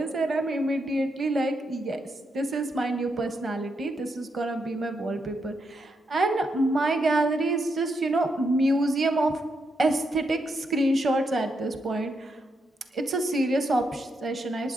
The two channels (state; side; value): normal; both; correlation 0.81